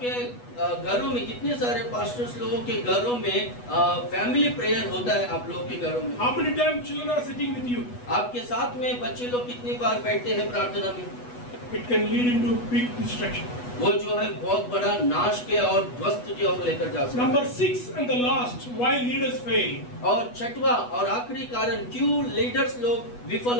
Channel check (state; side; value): late; right; 8.2 ms